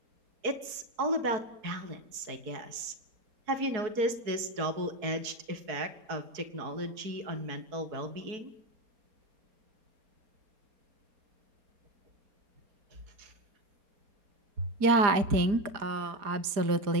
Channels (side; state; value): left; late; 4.6 ms